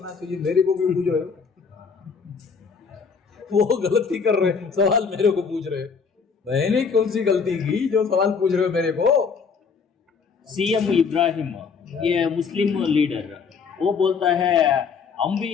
चाहिए, मेरे को भी पूछ रहे हो। वो गलती कर रहे हैं, सवाल मेरे को पूछ रहे हैं, मैंने कौन सी गलती की जो सवाल पूछ रहे हो मेरे को? सीएम इब्राहिम, ये मुस्लिम लीडर, वो बोलता है हम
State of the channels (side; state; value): right; quieter; 5.7 dB